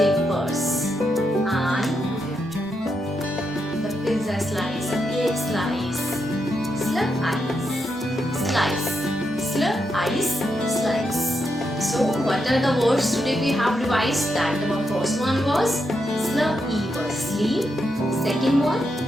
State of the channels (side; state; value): both; normal; correlation 0.83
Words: And the pizza slice, the cake slice. Slur-ice, slice. Slur-ice, slice. So what are the words today we have revised? That the first one was slur-e-v, sleep. Second one,